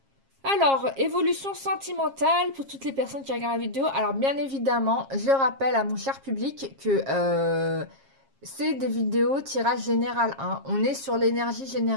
Alors, évolution sentimentale pour toutes les personnes qui regardent la vidéo. Alors, bien évidemment, je rappelle à mon cher public que... c'est des vidéos tirage général 1. On est sur l'énergie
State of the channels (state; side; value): late; left; 7.4 ms